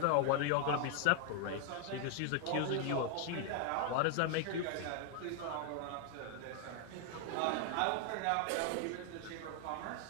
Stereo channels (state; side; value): different; both; correlation 0.00